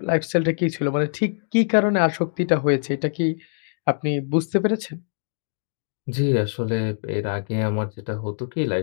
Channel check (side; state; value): right; silent; digital silence